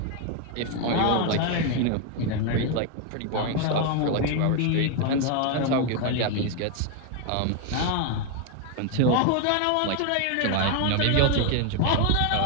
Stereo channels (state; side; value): different; both; correlation 0.01